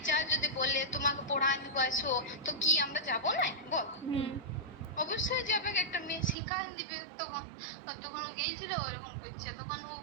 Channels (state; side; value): drops out; left; at 6.4 s